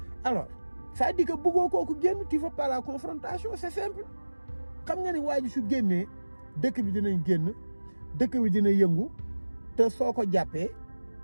alors ça dit que bëggoo kooku génn tu veux pas la confrontation c'est simple xam nga ni waa ji su génnee dëkk bi dinañ génn dëkk bi dina yëngu te soo ko jàppee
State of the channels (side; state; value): both; inverted; correlation -1.00